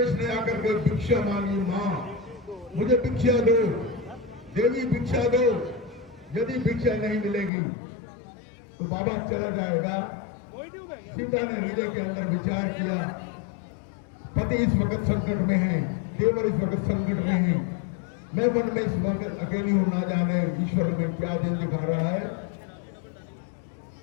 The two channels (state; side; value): drops out; right; at 7.5 s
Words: ने आकर के भिक्षा मांगी, मां मुझे भिक्षा दो, देवी भिक्षा दो। यदि भिक्षा नहीं मिलेगी तो बाबा चला जाएगा। सीता ने हृदय के अंदर विचार किया, पति इस वक्त संकट में है, देवर इस वक्त संकट में है, मैं मन में इस वक्त अकेली हूं, ना जाने ईश्वर में क्या दिन दिखा रहा है।